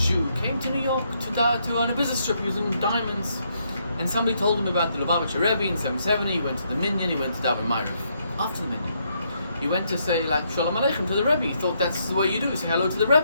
came to New York on a business trip using diamonds. And somebody told him about the Lubavitcher Rebbe in 770, he went to the Minyan, he went to Daven Ma'ariv. After the Minyan, he went to say Shalom Aleichem to the Rebbe. He thought that's the way you do, you say hello to the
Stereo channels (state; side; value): inverted; both; correlation -0.75